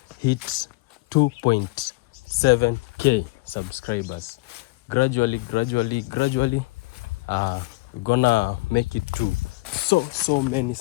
hit 2.7k subscribers. Gradually, we're gonna make it to so many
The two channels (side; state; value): right; quieter; 23.4 dB